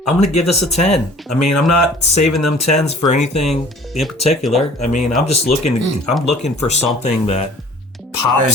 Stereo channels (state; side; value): normal; both; correlation 0.50